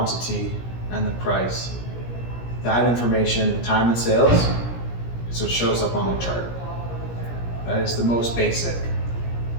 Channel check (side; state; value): right; late; 17 ms